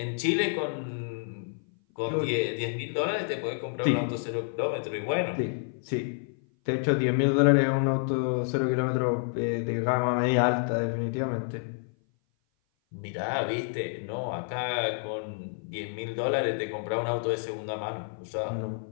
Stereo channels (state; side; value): silent; right; 56 dB below the other